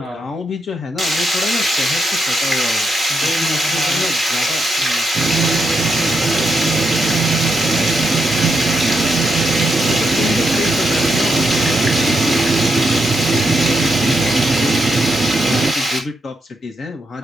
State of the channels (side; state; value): both; normal; correlation 0.82